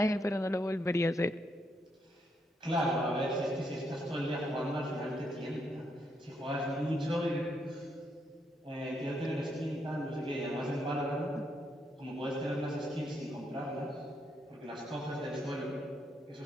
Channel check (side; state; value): both; normal; correlation 0.78